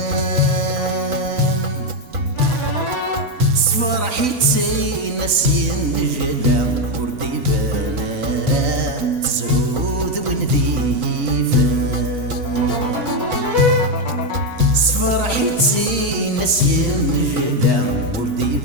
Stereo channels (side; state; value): left; late; 3.9 ms